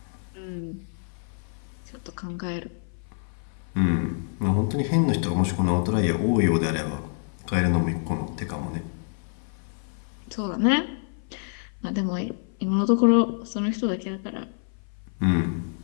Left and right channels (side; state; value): right; silent; 56 dB below the other